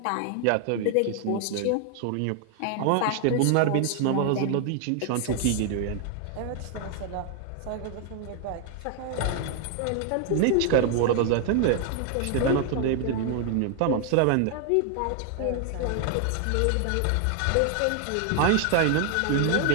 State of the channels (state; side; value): different; both; correlation 0.00